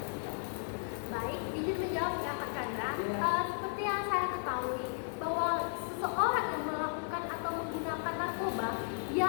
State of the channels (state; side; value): silent; right; digital silence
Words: Baik, izin menjawab ya Kak Chandra. Iya. Seperti yang saya ketahui bahwa seseorang yang melakukan atau menggunakan narkoba, dia